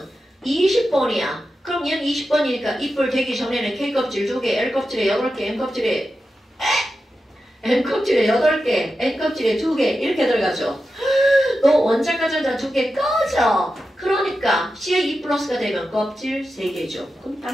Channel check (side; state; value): both; normal; correlation 0.91